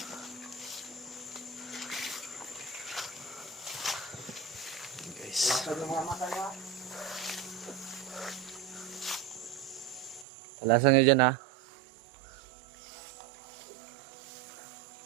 Guys. Alasan nyo dyan, ha.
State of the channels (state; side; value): drops out; left; at 10.2 s